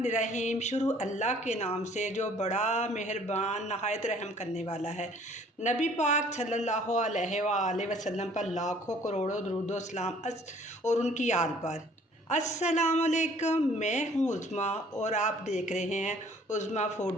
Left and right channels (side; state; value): both; normal; correlation 0.56